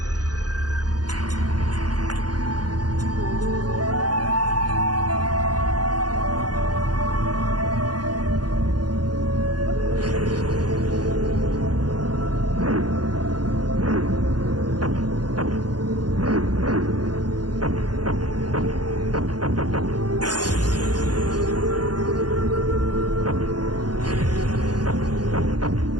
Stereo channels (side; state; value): left; late; 0.69 ms